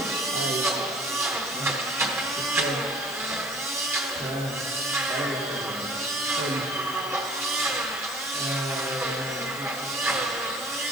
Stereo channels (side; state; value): left; noise; hiss, 13 dB below the sound